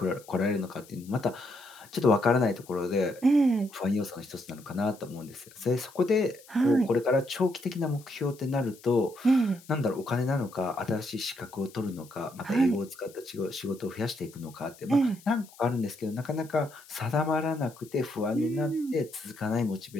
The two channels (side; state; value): left; noise; hiss, 23 dB below the sound